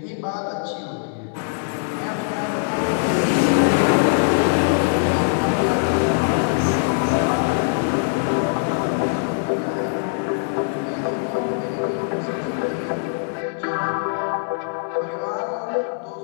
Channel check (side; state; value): right; silent; digital silence